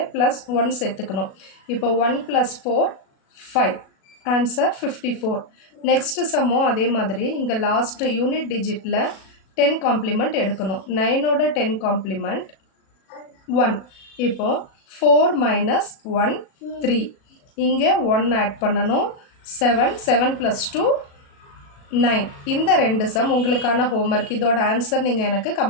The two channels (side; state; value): right; late; 37 ms